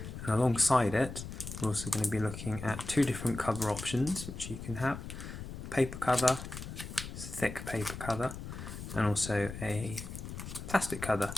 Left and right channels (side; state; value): left; noise; rumble, 9 dB below the sound